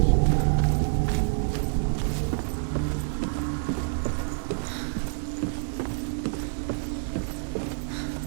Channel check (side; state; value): left; silent; digital silence